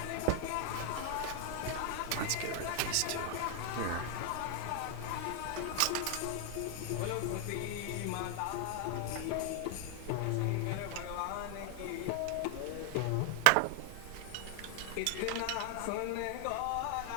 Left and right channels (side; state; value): both; different; correlation 0.00